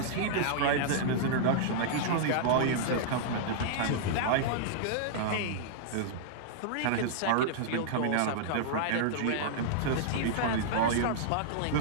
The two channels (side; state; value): both; different; correlation -0.02